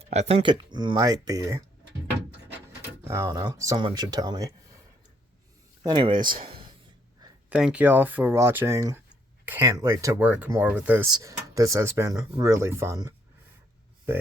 I think it might be. I don't know. Someone should tell me. Anyways, thank y'all for watching. Can't wait to work more with this. This has been really fun. But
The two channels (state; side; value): normal; both; correlation 0.69